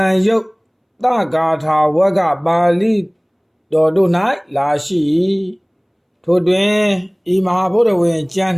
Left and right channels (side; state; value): both; identical; correlation 1.00